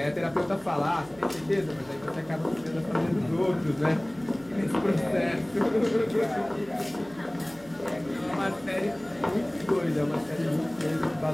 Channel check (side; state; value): right; noise; hum, 24 dB below the sound